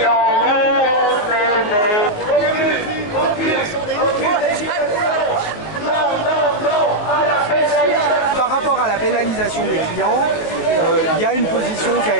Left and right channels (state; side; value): late; right; 19 ms